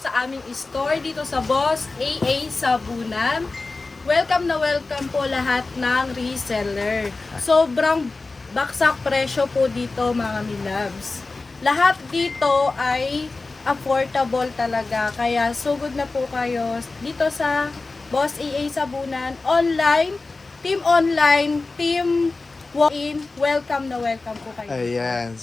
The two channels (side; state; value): right; quieter; 3.6 dB